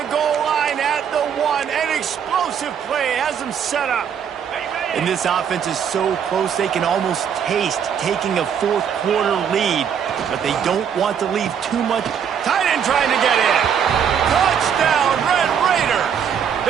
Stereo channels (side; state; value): left; quieter; 8.0 dB